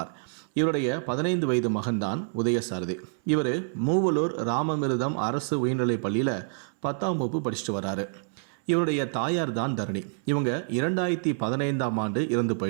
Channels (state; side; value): silent; left; 60 dB below the other